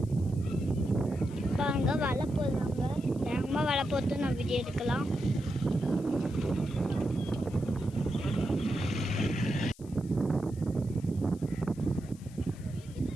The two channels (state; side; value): noise; left; hiss, 24 dB below the sound